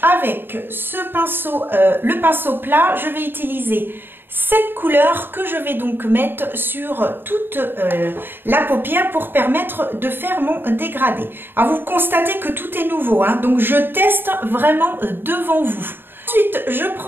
avec ce pinceau, le pinceau plat, je vais utiliser cette couleur que je vais donc mettre sur toute la paupière pour permettre de faire mon dégradé. Alors vous constatez que tout est nouveau, hein, donc je teste vraiment devant vous. Ensuite, je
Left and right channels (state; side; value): late; left; 0.098 ms